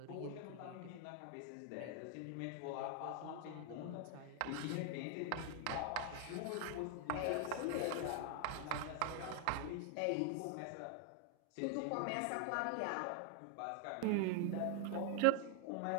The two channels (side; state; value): both; different; correlation 0.00